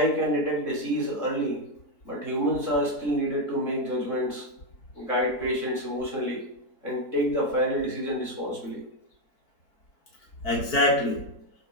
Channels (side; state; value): right; late; 4.5 ms